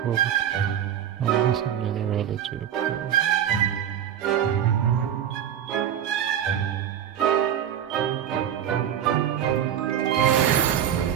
I'm missing numerology.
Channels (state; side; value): quieter; left; 9.8 dB